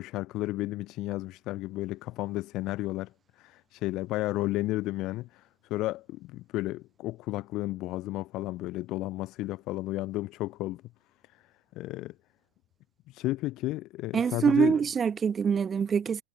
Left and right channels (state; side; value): normal; both; correlation 0.53